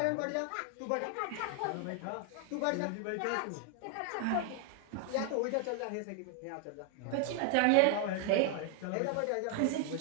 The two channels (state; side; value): different; both; correlation 0.00